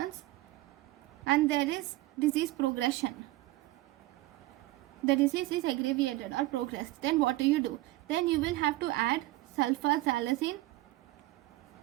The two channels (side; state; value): left; quieter; 18.4 dB